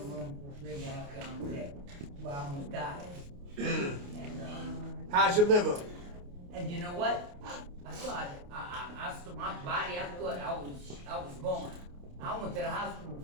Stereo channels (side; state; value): left; late; 28 ms